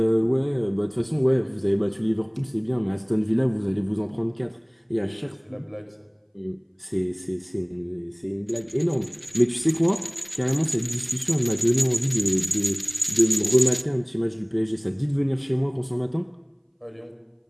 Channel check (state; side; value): identical; both; correlation 1.00